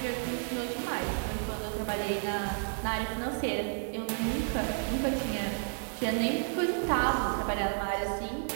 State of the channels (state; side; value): silent; left; 57 dB below the other